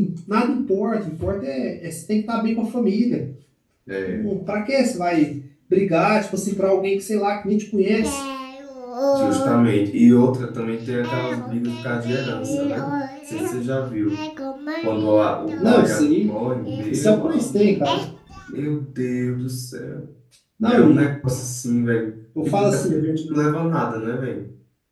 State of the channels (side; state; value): both; identical; correlation 1.00